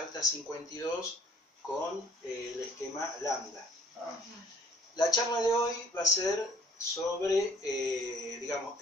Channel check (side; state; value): both; normal; correlation 0.59